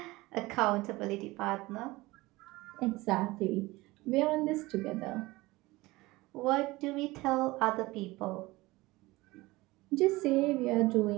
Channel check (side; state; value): left; quieter; 20.5 dB